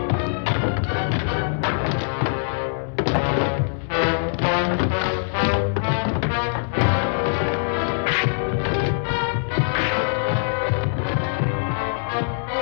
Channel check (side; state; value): right; silent; digital silence